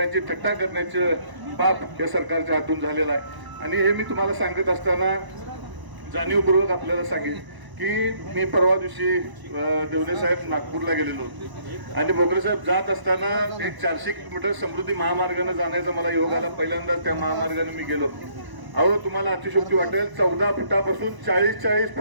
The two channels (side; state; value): left; late; 1.0 ms